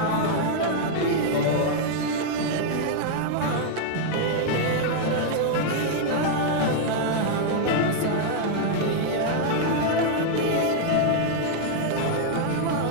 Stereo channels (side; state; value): both; different; correlation -0.01